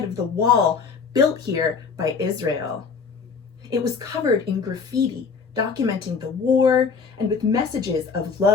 of the wall built here by Israel. It was covered in graffiti, documenting the war and with messages of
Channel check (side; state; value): right; quieter; 5.5 dB